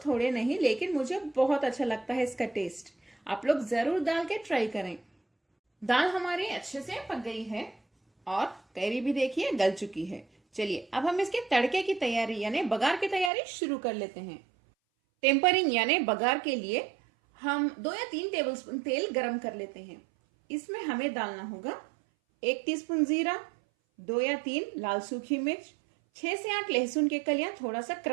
थोड़े नहीं, लेकिन मुझे बहुत अच्छा लगता है इसका टेस्ट। आप लोग जरूर डाल के ट्राई करें। दाल हमारी अच्छे से पक गई है और कैरी भी देखिए गल चुकी है। चलिए अब हम इसके तड़के की तैयारी यानी बघार की तैयारी शुरू कर लेते हैं। टेम्परिंग यानी बघार के लिए हम 2 या 3 टेबलस्पून तेल गरम कर लेते हैं। इसमें हमें डालना होगा 1 टीस्पून जीरा, 2 या 3 लाल सूखी मिर्च, 6 से 8 लहसुन के कलियां थोड़ा सा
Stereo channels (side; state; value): left; drops out; at 13.3 s